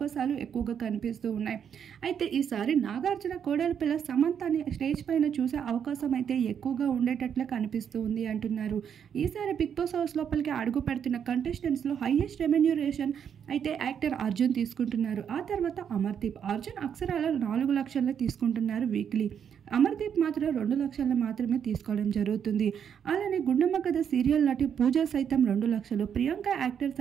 ఎక్కువగా కనిపిస్తూ ఉన్నాయి. అయితే ఈసారి నాగార్జున కోడల పిల్ల సమంతని స్టేజ్ పైన చూసే అవకాశం అయితే ఎక్కువగా ఉండేటట్లే కనిపిస్తూ ఉంది అంటున్నారు. ఈసారి బిగ్ బాస్ హౌస్ లోపలికి అడుగు పెడుతున్న కంటెస్టెంట్స్లో హైయెస్ట్ రెమ్యూనరేషన్ అయితే యాక్టర్ అర్జున్ తీసుకుంటున్నారు. ఆ తర్వాత అమర్దీప్. అర్జున్ అక్షరాల 4 లక్షలు తీసుకుంటున్నారు వీక్లీ. అమర్దీప్ మాత్రం 2 లక్షలు మాత్రమే తీసుకోవడం జరుగుతుంది. అలానే గుండమ్మ కథ సీరియల్ నటి పూజ సైతం 2 లక్షలు, ప్రియాంక యాక్టర్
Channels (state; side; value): quieter; left; 8.1 dB